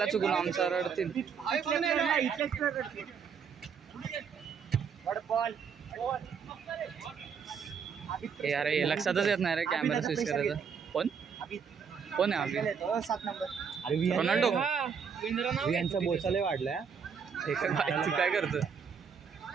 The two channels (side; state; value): left; quieter; 6.6 dB